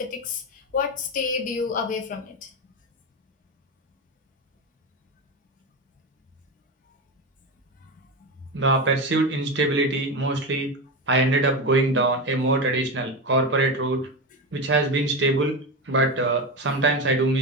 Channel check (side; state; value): both; normal; correlation 0.17